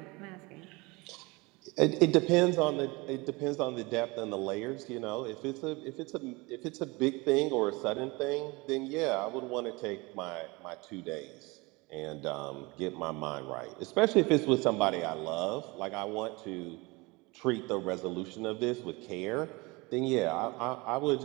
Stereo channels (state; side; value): quieter; left; 24.9 dB